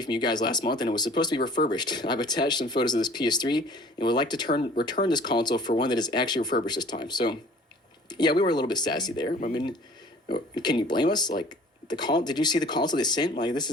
from you guys last month and it was supposed to be refurbished. I've attached some photos of this PS3 and would like to return this console for one that is actually refurbished this time. So, yeah, we were a little bit sassy there. I mean, can you blame us? Like, did you see the console they sent? Like,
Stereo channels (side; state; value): both; normal; correlation 0.50